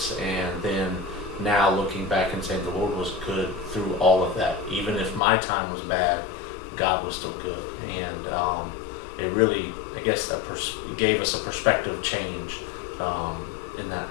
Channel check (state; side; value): drops out; right; at 5.2 s